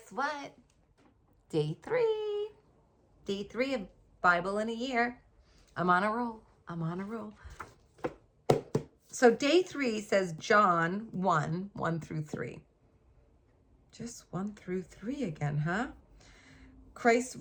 what? Day 3. Day 3 of Bible in a year. I'm on a roll. I'm on a roll. So day 3 says John 1, 1 through 3. Just 1 through 3 again, huh? Christ's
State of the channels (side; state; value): both; identical; correlation 1.00